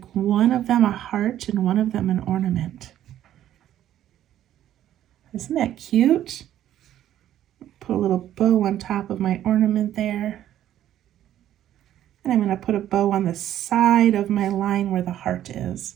one of them a heart and one of them an ornament. Isn't that cute? Put a little bow on top of my ornament there. And I'm going to put a bow on the side of my line where the heart is.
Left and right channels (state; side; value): quieter; left; 11.9 dB